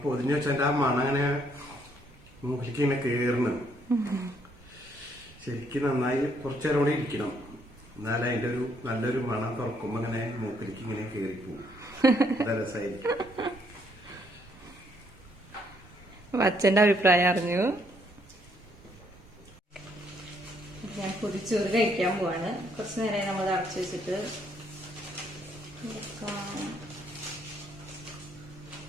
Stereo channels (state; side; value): normal; both; correlation 0.70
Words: പൊതിഞ്ഞു വെച്ചാൽ ആ മണം അങ്ങനെ മൂക്കിലേക്ക് ഇങ്ങനെ കേറണം. ശരിക്കും നന്നായി കുറച്ചു നേരം കൂടി ഇരിക്കണം, എന്നാലും അതിന്റെ ഒരു നല്ലൊരു മണം തുറക്കുമ്പോ ഇങ്ങനെ മൂക്കിലേക്ക് ഇങ്ങനെ കേറിപ്പോവും. രസമായിരിക്കും. അച്ഛന്റെ അഭിപ്രായം അറിഞ്ഞു. ഞാൻ പൊതിച്ചോറ് കഴിക്കാൻ പോവാണ്. കുറച്ചു നേരം നമ്മൾ അടച്ചു വെച്ചിട്ട്